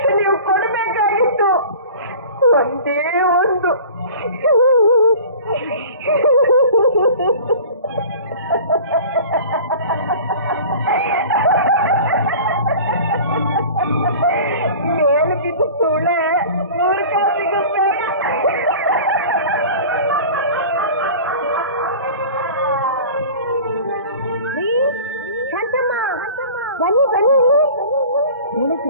ನೀವು ಕೊಡಬೇಕಾಗಿತ್ತು. ಒಂದೇ ಒಂದು. ಮೇಲೆ ಬಿದ್ದು ಸುಳ್ಳೆ ಮೂರ್ಖ ಸಿಗುತ್ತೆ. ಬನ್ನಿ ಬನ್ನಿ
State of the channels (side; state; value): both; inverted; correlation -0.41